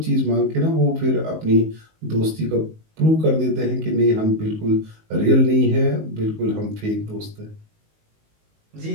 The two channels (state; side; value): late; left; 19 ms